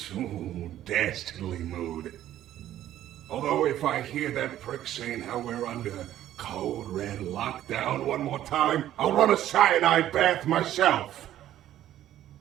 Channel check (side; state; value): left; quieter; 12.5 dB